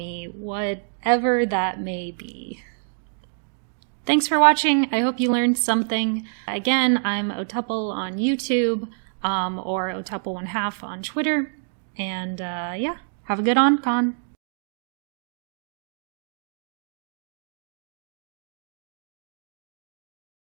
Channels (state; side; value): silent; left; digital silence